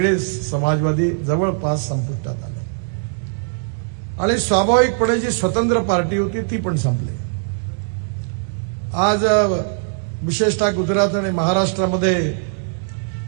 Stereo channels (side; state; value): left; silent; digital silence